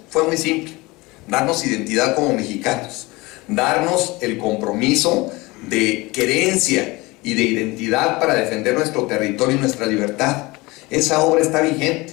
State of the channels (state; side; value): quieter; right; 22.7 dB